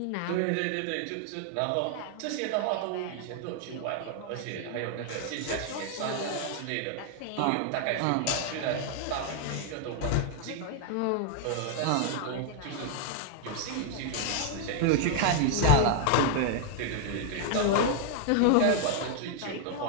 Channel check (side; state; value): both; different; correlation 0.00